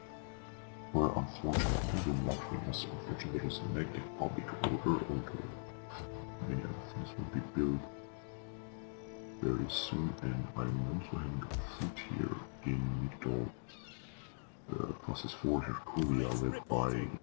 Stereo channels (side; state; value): right; silent; digital silence